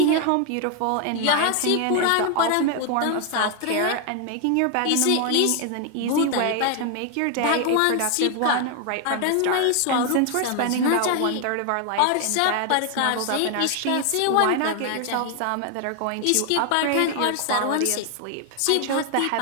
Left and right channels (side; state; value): both; different; correlation 0.01